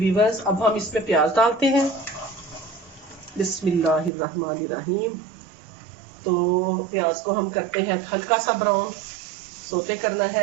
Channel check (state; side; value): drops out; left; at 4.1 s